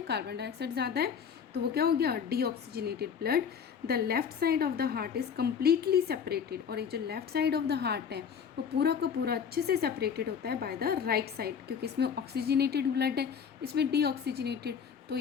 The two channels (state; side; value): quieter; right; 7.1 dB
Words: carbon dioxide ज़्यादा है, तो वो क्या हो गया, deoxygenated blood. The left side of the heart is completely separated, और ये जो left side of the heart है वो पूरा का पूरा अच्छे से सेपरेटेड होता है बाय द राइट साइड, क्योंकि इसमें ऑक्सीजनेटेड ब्लड है, इसमें डीऑक्सीजनेटेड, तो